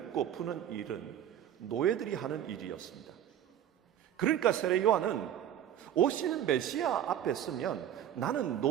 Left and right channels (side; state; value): left; quieter; 10.5 dB